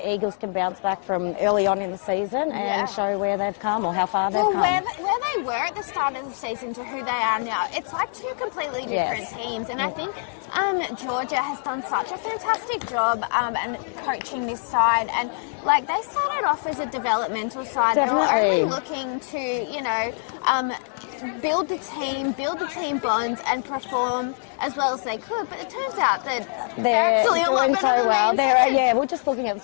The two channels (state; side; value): silent; right; digital silence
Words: Eagles can bounce back from early on in the season and show where they've come or how far they've come. Where they were at the start of the season to who they are now, it's like two completely different teams. And I think Georgia has done such a fantastic job and coaching this side. And like they started off as a developmental side. Definitely. They were only looking to, build the team bonds and perform as well as they could, but it turns out that they're actually doing so well. We're we're just looking at the